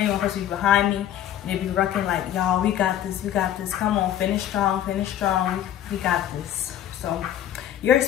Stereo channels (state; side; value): quieter; right; 11.1 dB